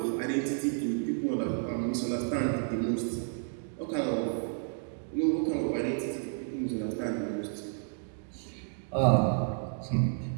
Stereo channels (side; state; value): left; silent; digital silence